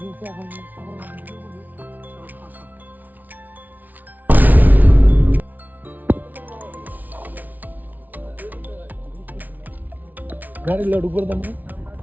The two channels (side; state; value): left; late; 0.079 ms